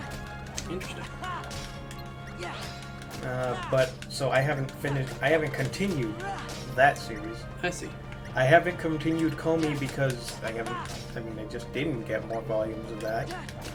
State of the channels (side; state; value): both; identical; correlation 1.00